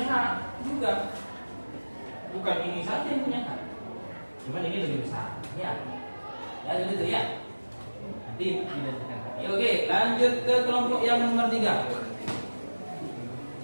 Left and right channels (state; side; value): inverted; both; correlation -1.00